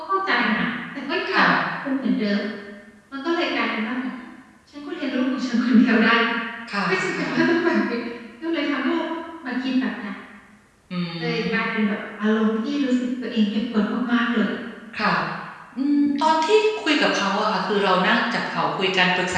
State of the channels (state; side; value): identical; both; correlation 1.00